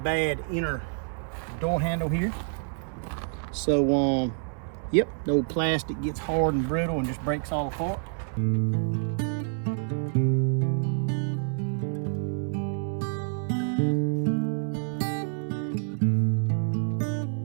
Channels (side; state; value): left; silent; 60 dB below the other